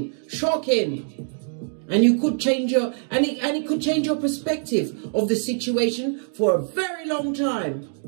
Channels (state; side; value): silent; left; 63 dB below the other